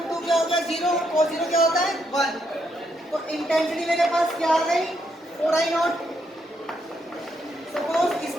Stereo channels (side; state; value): both; normal; correlation 0.77